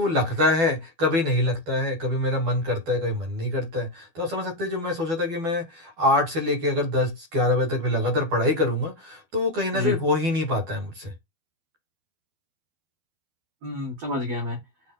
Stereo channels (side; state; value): left; late; 12 ms